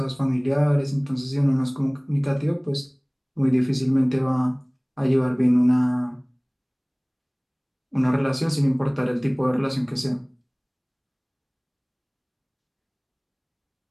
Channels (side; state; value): both; identical; correlation 1.00